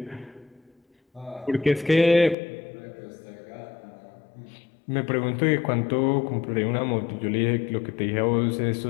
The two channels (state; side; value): drops out; right; at 2.4 s